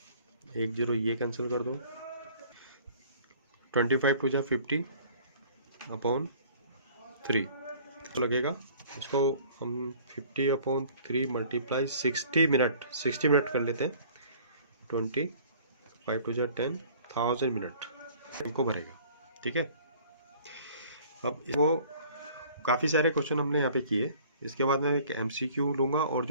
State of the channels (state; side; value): inverted; both; correlation -0.52